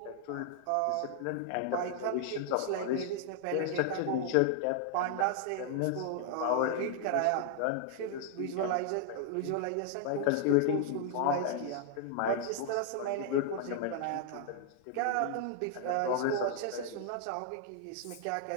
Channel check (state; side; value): different; both; correlation -0.01